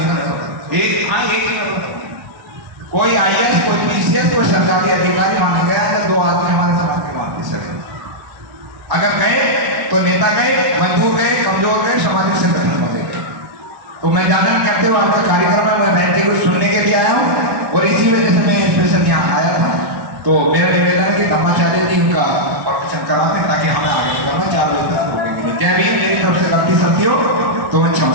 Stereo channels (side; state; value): left; late; 1.0 ms